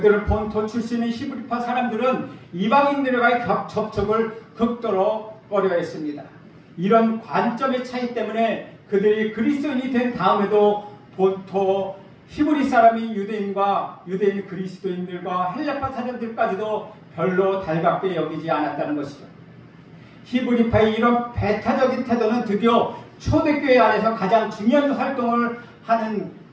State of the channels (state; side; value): identical; both; correlation 1.00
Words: 본토 출신의 히브리파 사람들은 이방인들과의 접촉을 극도로 꺼려했습니다. 이런 관점의 차이 때문에 그들이 그리스도인이 된 다음에도 본토 히브리 사람인 유대인 그리스도인들과 헬라파 사람들까지도 별로 달갑게 여기지 않았다는 것이죠. 히브리파의 이런 배타적인 태도는 드디어 초대교회 안에서 가장 중요한 활동을 하는